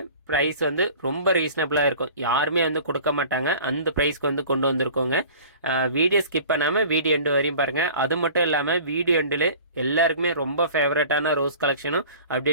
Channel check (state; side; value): inverted; both; correlation -0.44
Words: ப்ரைஸ் வந்து ரொம்ப ரீசனபிளாக இருக்கும், யாருமே வந்து கொடுக்க மாட்டாங்க, அந்த ப்ரைஸ்க்கு வந்து கொண்டு வந்திருக்கோங்க. வீடியோ ஸ்கிப் பண்ணாமல் வீடியோ எண்டு வரையும் பாருங்கள். அது மட்டும் இல்லாமல் வீடியோ எண்டில் எல்லாருக்குமே ரொம்ப ஃபேவரட்டான ரோஸ் கலெக்ஷனும்